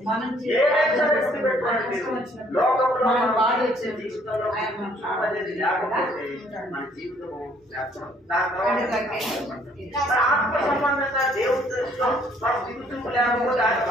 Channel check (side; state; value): both; normal; correlation 0.63